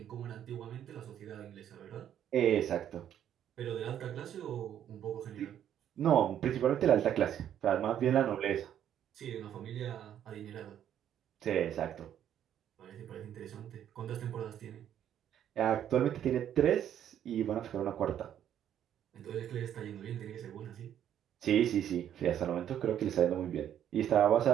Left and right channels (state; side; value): quieter; left; 10.2 dB